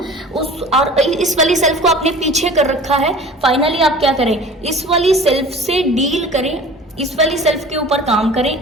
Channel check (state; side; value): normal; both; correlation 0.43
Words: उस और इस वाली सेल्फ को आपने पीछे कर रखा है। फाइनली आप क्या करें, इस वाली सेल्फ से डील करें, इस वाली सेल्फ के ऊपर काम करें,